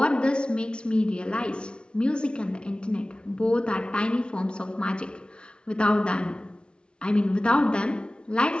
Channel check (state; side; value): late; right; 0.056 ms